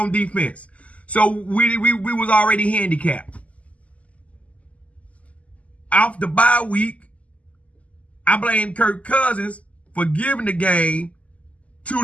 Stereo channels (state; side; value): late; right; 0.068 ms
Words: defense. So we was already handicapped. Off the bye week, I blame Kirk Cousins for giving the game to